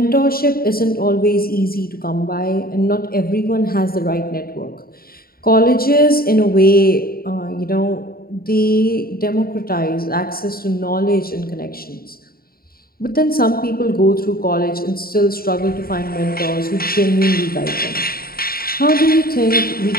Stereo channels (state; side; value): late; right; 0.43 ms